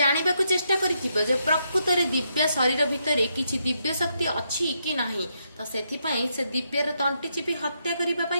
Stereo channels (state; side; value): inverted; both; correlation -0.79